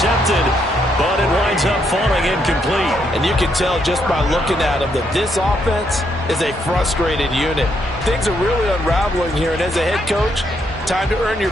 but it winds up falling incomplete. And you can tell just by looking at them that this offense is a frustrated unit. Things are really unraveling here, and as a head coach, time to earn your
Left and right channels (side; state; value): both; normal; correlation 0.75